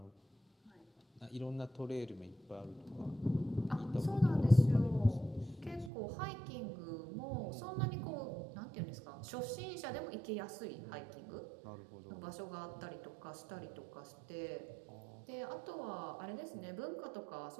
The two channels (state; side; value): drops out; left; at 5.9 s